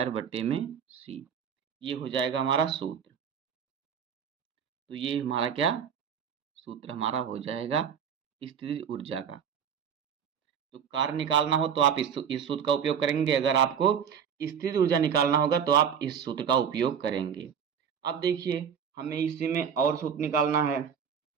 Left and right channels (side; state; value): left; quieter; 7.7 dB